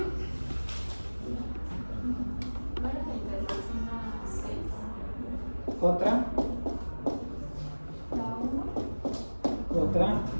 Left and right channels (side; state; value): both; inverted; correlation -1.00